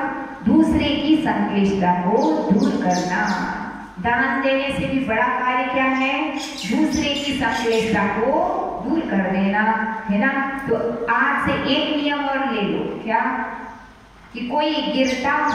दूसरे की संक्लेशता को दूर करना। दान देने से भी बड़ा कार्य क्या है? दूसरे की संक्लेशता को दूर कर देना, है ना। तो आज से एक नियम और ले लो, क्या? कि कोई गिरता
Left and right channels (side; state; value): both; identical; correlation 1.00